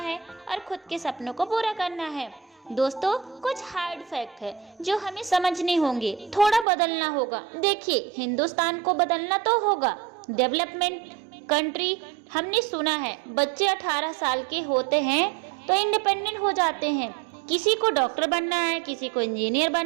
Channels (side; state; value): left; drops out; at 6.7 s